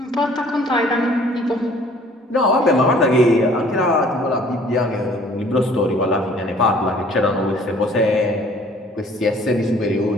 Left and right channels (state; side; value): normal; both; correlation 0.54